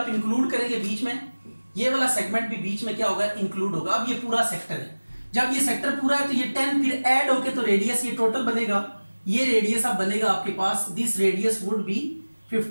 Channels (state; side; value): inverted; both; correlation -1.00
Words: इंक्लूड करेंगे बीच में, ये वाला सेगमेंट भी बीच में क्या होगा इंक्लूड होगा। अब ये पूरा सेक्टर है, जब ये सेक्टर पूरा है तो ये 10 फिर ऐड होके तो रेडियस ये टोटल बनेगा, ये रेडियस अब बनेगा आपके पास, this radius would be